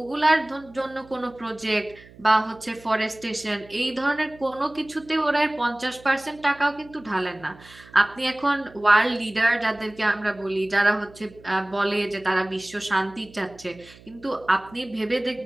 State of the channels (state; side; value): noise; right; hum, 23 dB below the sound